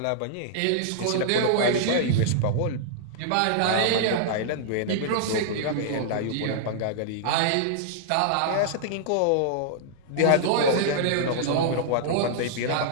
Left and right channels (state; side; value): different; both; correlation -0.01